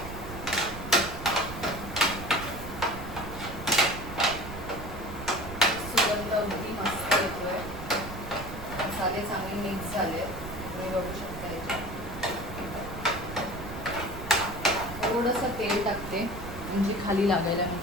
अगदी मस्त येतोय. मसाले चांगले मिक्स झाले, तुम्ही बघू शकता. याच्यात थोडंसं तेल टाकते म्हणजे खाली लागायला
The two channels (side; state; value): right; noise; rumble, 10 dB below the sound